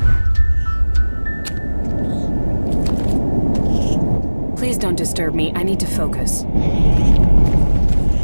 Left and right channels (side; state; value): both; inverted; correlation -1.00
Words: Please don't disturb me. I need to focus.